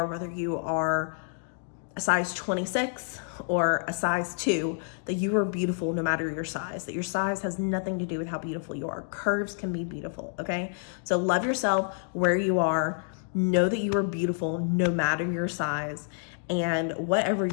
whether you are a size 26 or a size 2, that you are beautiful no matter your size. That your size has nothing to do with how beautiful you are. Curves can be beautiful, okay? So love yourself where you are. Know that you are beautiful no matter your size. And whatever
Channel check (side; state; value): right; silent; digital silence